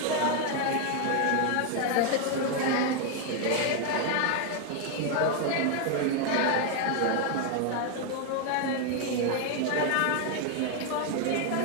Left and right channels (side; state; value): both; different; correlation 0.01